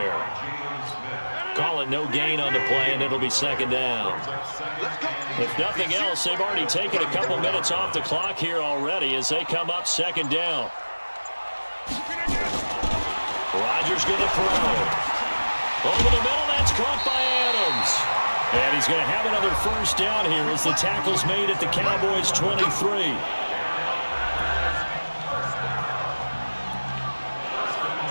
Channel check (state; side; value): inverted; both; correlation -1.00